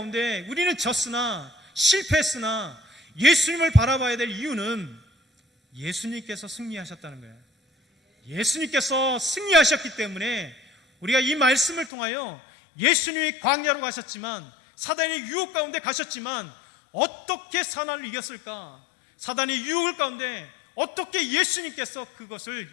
우리는 졌으나 실패했으나 예수님을 바라봐야 될 이유는 예수님께서 승리하셨다는 거예요. 예수님께서 승리하셨기 때문에 우리가 이 말씀을 통하여 예수님이 광야로 가셨지만 사단의 유혹 가운데 가셨지만 어떻게 사단을 이겼을까? 사단의 유혹을 가운데 어떻게 예수님께서 그것을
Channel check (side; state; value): right; drops out; at 11.9 s